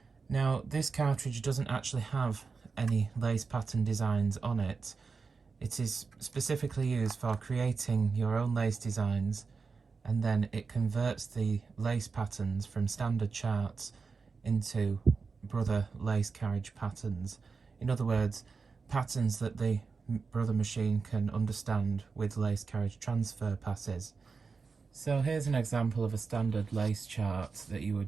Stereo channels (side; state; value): left; quieter; 4.8 dB